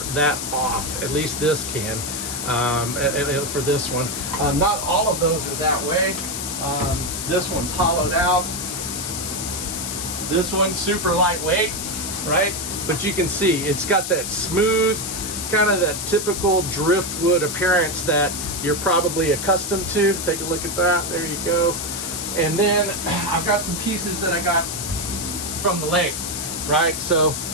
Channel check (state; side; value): noise; left; hiss, 4 dB below the sound